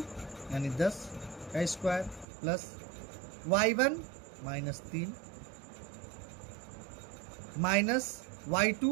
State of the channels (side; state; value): left; drops out; at 2.2 s